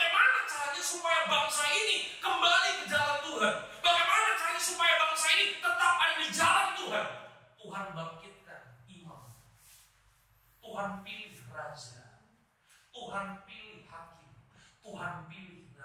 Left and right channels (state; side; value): identical; both; correlation 1.00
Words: caranya supaya bangsa ini kembali ke jalan Tuhan? Bagaimana caranya supaya bangsa ini tetap ada di jalan Tuhan? Tuhan bangkitkan imam. Tuhan pilih raja. Tuhan pilih hakim. Tuhan pilih